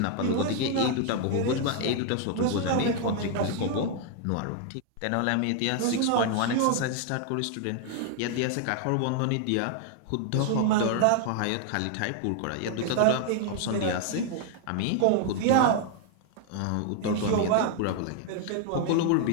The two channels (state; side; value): different; both; correlation 0.00